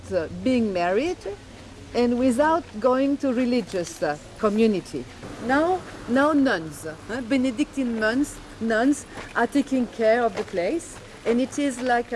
being married, and without going to religious community. Now nuns, Benedictine nuns are taking care of the place, and it is like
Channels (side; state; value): both; identical; correlation 1.00